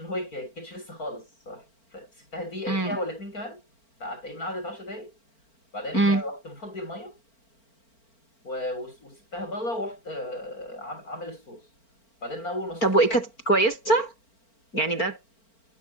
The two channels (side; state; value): right; late; 4.4 ms